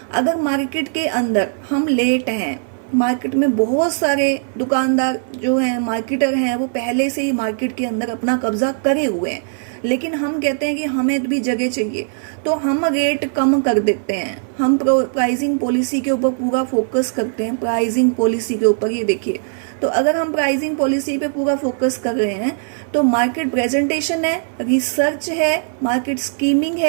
अगर मार्केट के अंदर हम लेट हैं, मार्केट में बहुत सारे दुकानदार जो हैं, मार्केटर हैं, वो पहले से ही मार्केट के अंदर अपना कब्जा करे हुए हैं, लेकिन हम कहते हैं कि हमें भी जगह चाहिए, तो हम रेट कम कर देते हैं। हम प्राइसिंग पॉलिसी के ऊपर पूरा फोकस करते हैं, प्राइसिंग पॉलिसी के ऊपर। ये देखिए, तो अगर हम प्राइसिंग पॉलिसी पे पूरा फोकस कर रहे हैं तो मार्केट प्रेजेंटेशन है, रिसर्च है, मार्केट स्कीमिंग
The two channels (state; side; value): silent; left; 62 dB below the other